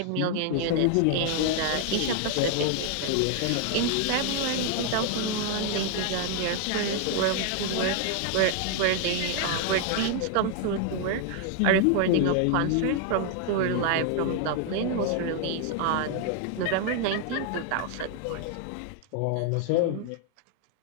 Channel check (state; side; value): different; both; correlation 0.00